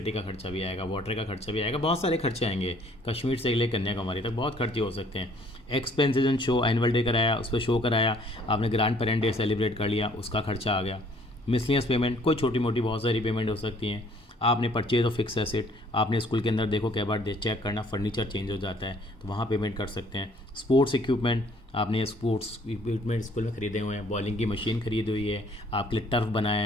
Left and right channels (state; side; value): normal; both; correlation 0.60